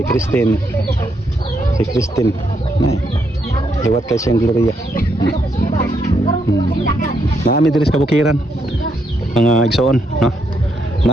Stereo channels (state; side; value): normal; both; correlation 0.77